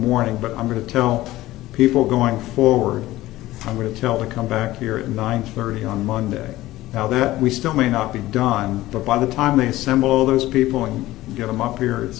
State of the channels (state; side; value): quieter; right; 16.6 dB